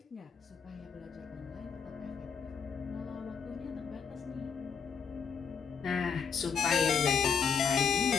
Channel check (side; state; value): right; quieter; 6.3 dB